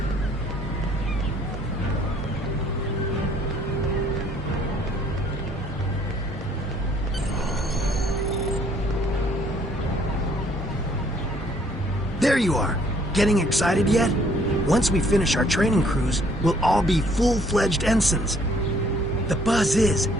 There you are. Getting excited yet? Once we finish our training cruise, we'll all be full-fledged ensigns. The buzz is,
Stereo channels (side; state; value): both; normal; correlation 0.62